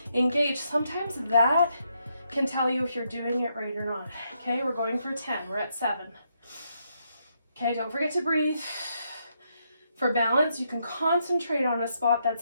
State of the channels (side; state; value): both; inverted; correlation -0.77